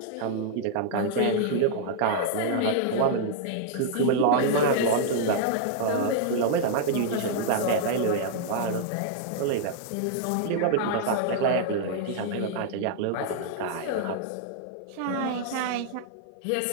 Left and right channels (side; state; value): both; different; correlation -0.01